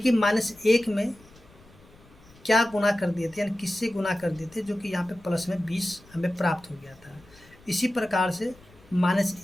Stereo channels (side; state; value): left; noise; rumble, 26 dB below the sound